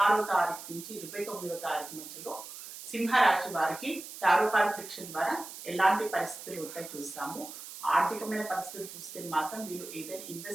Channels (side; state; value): right; noise; hiss, 12 dB below the sound